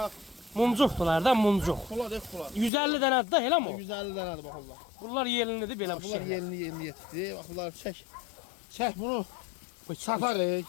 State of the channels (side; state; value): right; drops out; at 2.7 s